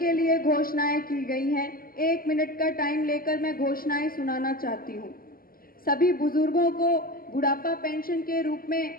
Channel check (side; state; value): right; late; 0.42 ms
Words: लिए घोषणाएं की गई हैं। 1 मिनट का टाइम लेकर मैं घोषणाएं सुनाना चाहती हूँ। सभी बुजुर्गों को बुढ़ापा पेंशन के रूप में